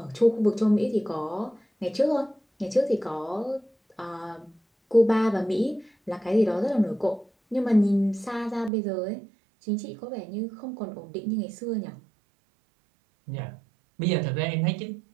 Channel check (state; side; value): drops out; left; at 8.7 s